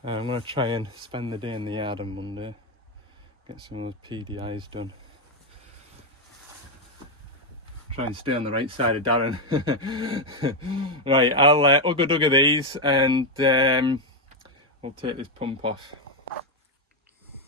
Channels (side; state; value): both; normal; correlation 0.05